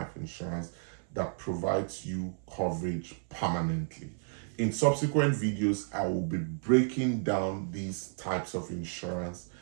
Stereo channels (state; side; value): silent; left; 56 dB below the other